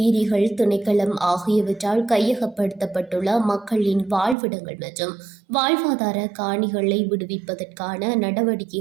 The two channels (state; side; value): drops out; left; at 4.4 s